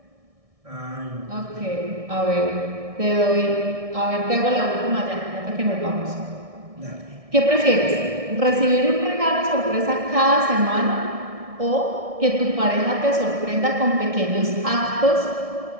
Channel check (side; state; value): left; late; 1.6 ms